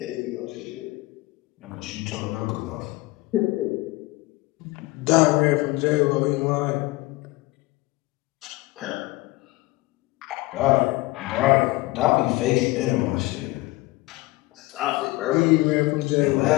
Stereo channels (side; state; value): right; quieter; 20.9 dB